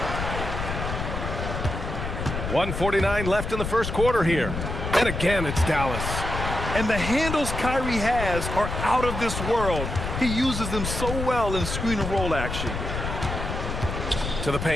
1:49 left in the first quarter here. And again, it's Dallas. And the handles Kyrie has are out of this world. He uses them so well in screen and roll action. To the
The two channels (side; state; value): left; noise; rumble, 4 dB below the sound